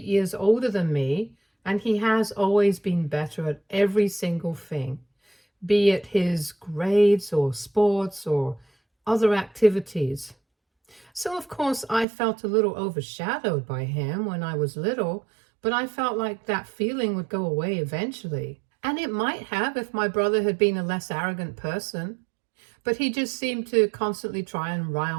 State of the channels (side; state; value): left; drops out; at 12.1 s